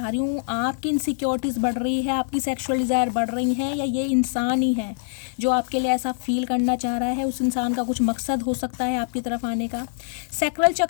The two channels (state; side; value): silent; right; 63 dB below the other